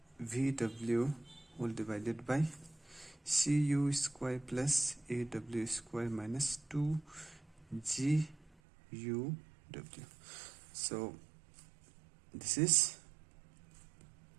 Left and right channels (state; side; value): drops out; left; at 8.6 s